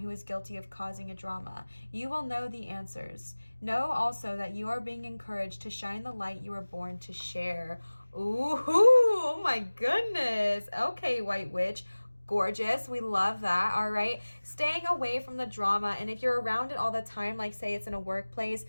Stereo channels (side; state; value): both; inverted; correlation -1.00